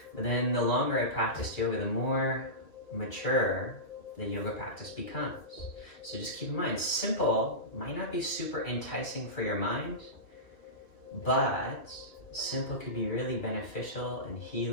But then the longer I practiced yoga, the more mature the yoga practice becomes. So just keep in mind, simple might not be super enticing for your mind, but simple could be really beneficial and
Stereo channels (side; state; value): right; late; 2.6 ms